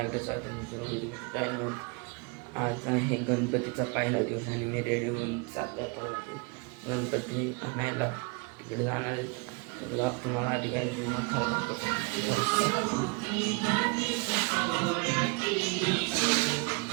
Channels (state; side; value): quieter; left; 31.0 dB